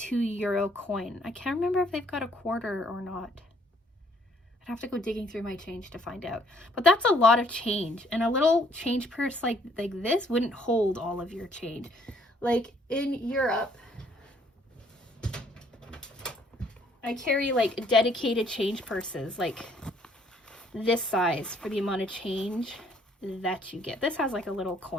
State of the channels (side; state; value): both; normal; correlation 0.64